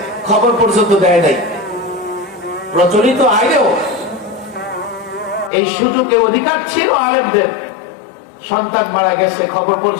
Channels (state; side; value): drops out; right; at 5.5 s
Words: খবর পর্যন্ত দেয় নাই। প্রচলিত আইনেও এই সুযোগে অধিকার ছিল আলেমদের, সন্তান মারা গেছে খবর